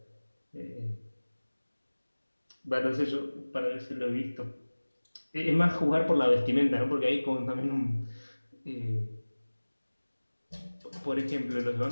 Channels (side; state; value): both; inverted; correlation -1.00